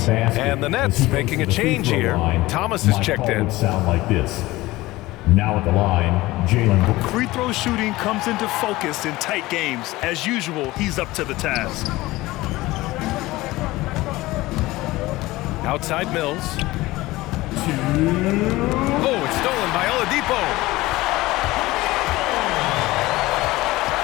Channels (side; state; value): right; quieter; 19.0 dB